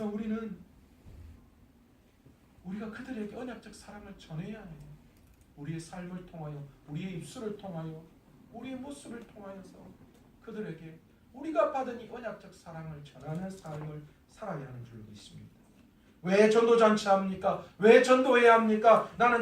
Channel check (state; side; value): identical; both; correlation 1.00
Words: 우리가 그들에게 언약적 사랑을 전해야 해요. 우리의 삶을 통하여, 우리의 입술을 통하여, 우리의 모습을 통하여서 그들에게 우리가 받은 이 언약적 사랑을 전하는 삶을 살아야 하는 줄 믿습니다. 왜 전도잔치 합니까? 왜 전도해야 합니까? 나는